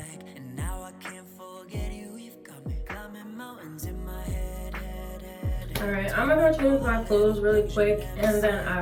Alright, I'm gonna change my clothes really quick and then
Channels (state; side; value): identical; both; correlation 1.00